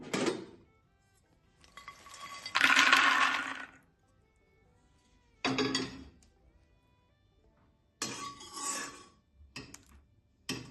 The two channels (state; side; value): identical; both; correlation 1.00